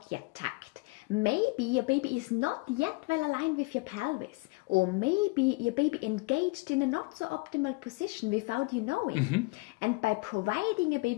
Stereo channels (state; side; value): quieter; right; 26.2 dB